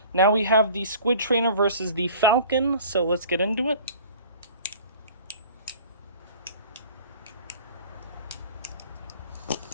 Now we have the Squid Trainer versus the Falcon, so let's get into it.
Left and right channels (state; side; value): inverted; both; correlation -0.46